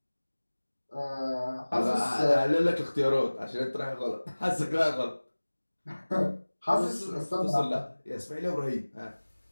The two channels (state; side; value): inverted; both; correlation -1.00